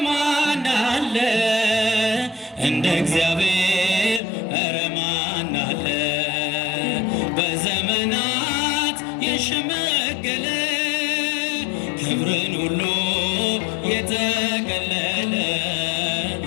ማን አለ? እንደ እግዚአብሔር ኧረ ማን አለ? በዘመናት የሸመገለ ክብርን ሁሉ የተቀለለ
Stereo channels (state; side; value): drops out; right; at 4.2 s